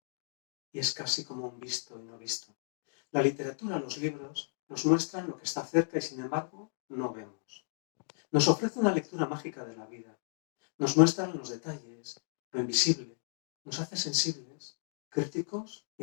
y es casi como un visto y no visto. La literatura, los libros, nos muestran lo que está cerca y sin embargo no vemos. Nos ofrece una lectura mágica de la vida. Nos muestran los detalles, lo invisible. Nos hace sensibles, críticos y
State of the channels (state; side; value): silent; right; digital silence